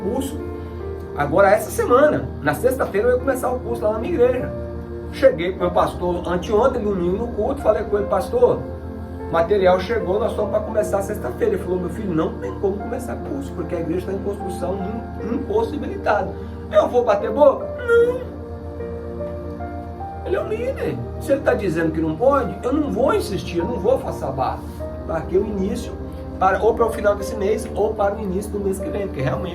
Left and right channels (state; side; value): identical; both; correlation 1.00